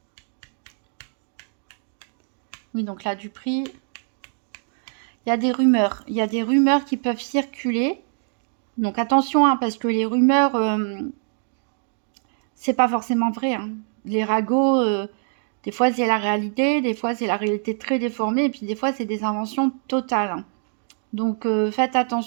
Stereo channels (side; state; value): left; silent; digital silence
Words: Oui, donc là, du prix. Il y a des rumeurs. Il y a des rumeurs qui peuvent circuler. Donc, attention, hein, parce que les rumeurs, c'est pas forcément vrai, hein. Les ragots, des fois, c'est la réalité. Des fois, c'est la réalité très déformée. Et puis, des fois, c'est des inventions totales, hein. Donc, faites